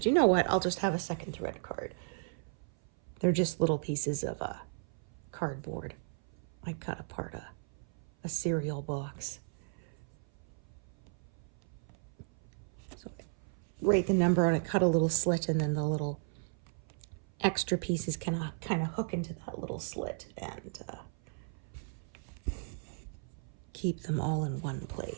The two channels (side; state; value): left; silent; 54 dB below the other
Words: you know what? I'll just have a second thread card. They're just little pieces of cardboard. I cut apart a cereal box. So I write the number on it, cut a little slit, and then the little extra pieces kind of hook into that little slit and keep them all in one